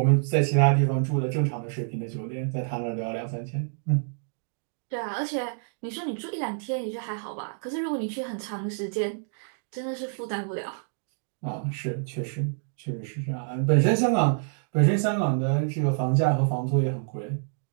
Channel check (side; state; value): left; silent; digital silence